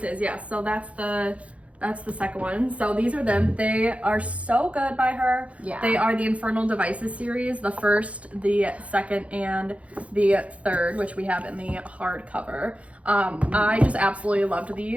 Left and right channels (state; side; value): late; left; 0.064 ms